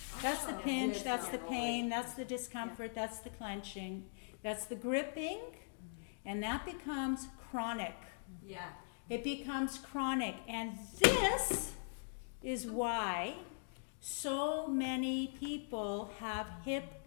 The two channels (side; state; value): right; silent; digital silence